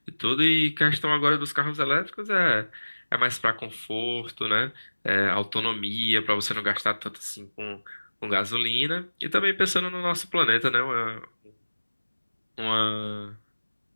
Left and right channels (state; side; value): inverted; both; correlation -1.00